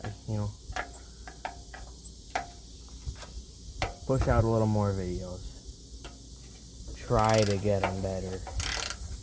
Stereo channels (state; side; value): identical; both; correlation 1.00